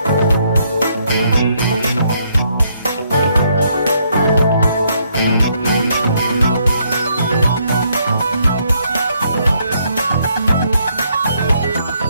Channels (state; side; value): inverted; both; correlation -0.72